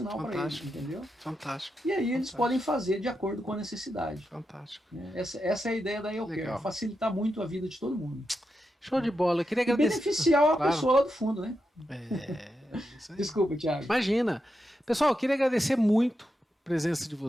para eles, entendeu? Fantástico. E aí eles podem fazer de acordo com a necessidade. Fantástico. Essa é a ideia da EOCare, facilitar muito a vida de todo mundo. Show de bola. Eu queria agradecer. E beneficiar a pessoa lá do fundo, né? Isso aí. Desculpa, Thiago. Imagina. Pessoal, eu queria agradecer muito a presença de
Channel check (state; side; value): normal; both; correlation 0.87